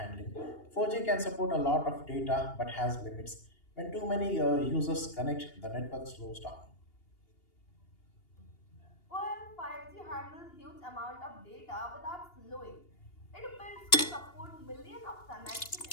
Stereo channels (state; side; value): late; right; 2.8 ms